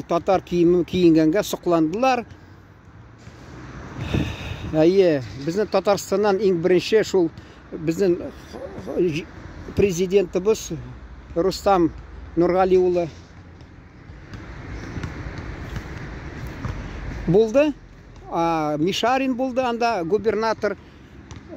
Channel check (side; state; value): both; identical; correlation 1.00